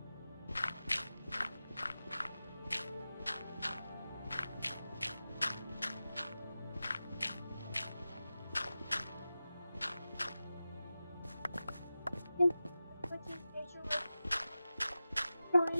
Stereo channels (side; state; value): both; inverted; correlation -0.94